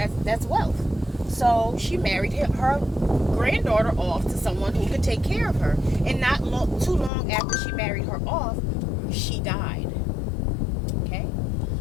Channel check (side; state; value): right; drops out; at 7.1 s